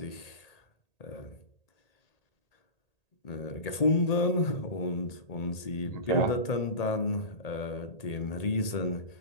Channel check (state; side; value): late; right; 1.8 ms